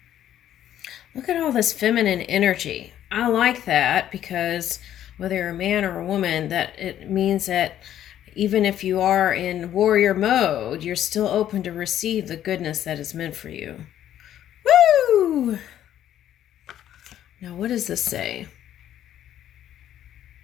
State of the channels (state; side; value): quieter; right; 11.4 dB